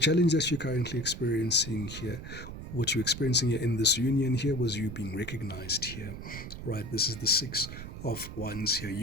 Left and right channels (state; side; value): noise; right; rumble, 10 dB below the sound